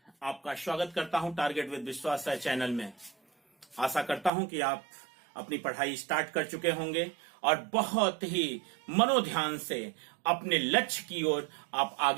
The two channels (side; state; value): left; drops out; at 4.3 s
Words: आपका स्वागत करता हूं टारगेट विद विश्वास राय चैनल में। आशा करता हूं कि आप अपनी पढ़ाई स्टार्ट कर चुके होंगे और बहुत ही मनोध्यान से अपने लक्ष्य की ओर आप